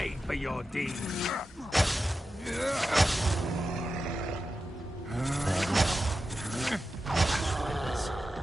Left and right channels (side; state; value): both; normal; correlation 0.91